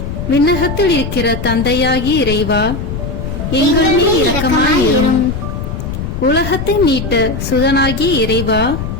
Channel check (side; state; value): left; noise; rumble, 5 dB below the sound